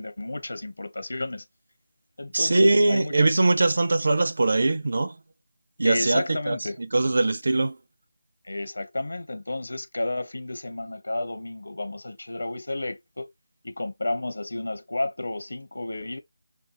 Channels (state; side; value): inverted; both; correlation -0.97